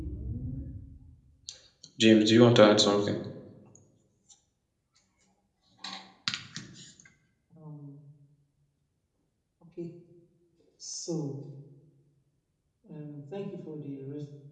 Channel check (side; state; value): both; identical; correlation 1.00